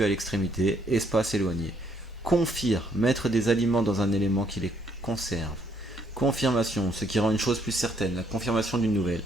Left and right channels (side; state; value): both; normal; correlation 0.69